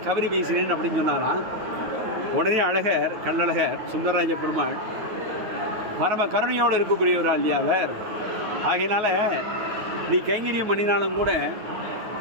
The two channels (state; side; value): late; left; 9.4 ms